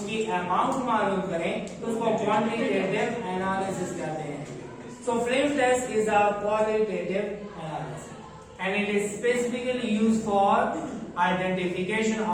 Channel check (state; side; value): identical; both; correlation 1.00